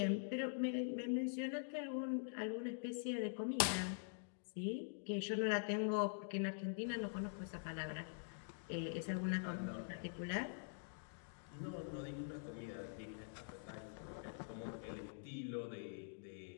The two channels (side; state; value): right; silent; digital silence